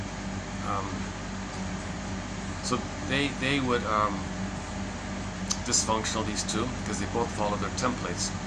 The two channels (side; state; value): both; identical; correlation 1.00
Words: they would dysfunctional, these two, because they both follow their templates.